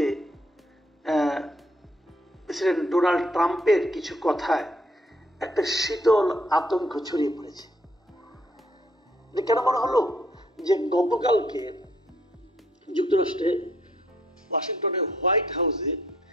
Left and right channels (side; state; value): both; normal; correlation 0.67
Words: প্রেসিডেন্ট ডোনাল্ড ট্রাম্পের কিছু কথায় একটা শীতল আতঙ্ক ছড়িয়ে পড়েছে। কেন মনে হলো যে গতকালকে যুক্তরাষ্ট্রে ওয়াশিংটনের হোয়াইট হাউসে